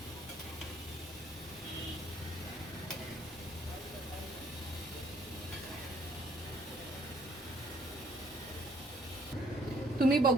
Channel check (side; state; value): both; normal; correlation 0.63